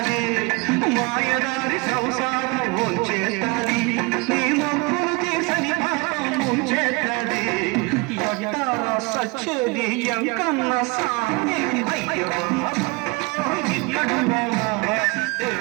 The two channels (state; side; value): quieter; left; 27.5 dB